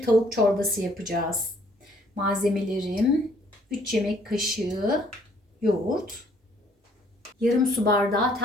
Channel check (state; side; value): normal; both; correlation 0.63